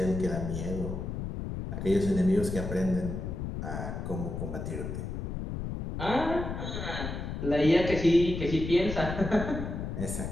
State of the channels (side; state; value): left; noise; rumble, 5 dB below the sound